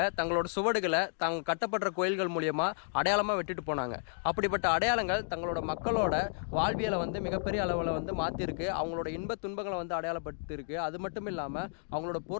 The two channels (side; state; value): right; silent; digital silence